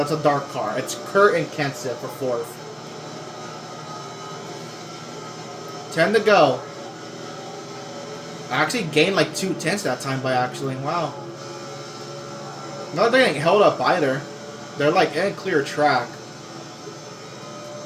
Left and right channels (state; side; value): identical; both; correlation 1.00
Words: a dark car. It's Kurt and Kenseth for fourth. 10 to go. I actually gained like 2 tenths that time by actually. Wow. Not getting held up either. They're like in a clear track.